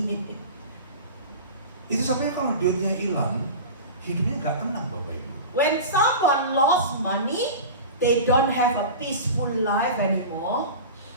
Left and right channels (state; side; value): inverted; both; correlation -0.31